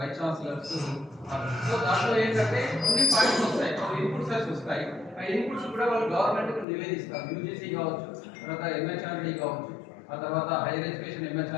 ఛాన్సలర్స్. సో దాంట్లో ఏంటంటే కొన్ని పాయింట్స్ వస్తాయి, ఇన్పుట్స్ వస్తాయి. ఆ ఇన్పుట్స్ కూడా వాళ్ళు గవర్నమెంట్కి నివేదిస్తారు. యూజీసీ కావచ్చు, తర్వాత ఎంహెచ్ఆర్డీ కావచ్చు, ఆ తర్వాత హైయర్ ఎడ్యుకేషన్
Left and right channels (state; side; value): drops out; right; at 6.7 s